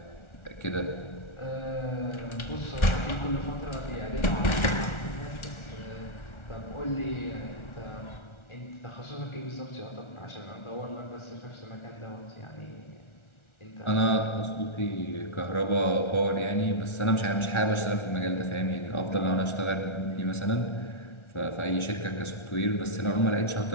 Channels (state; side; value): late; right; 1.4 ms